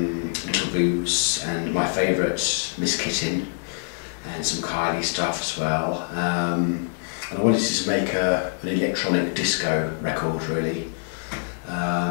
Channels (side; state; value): right; silent; 56 dB below the other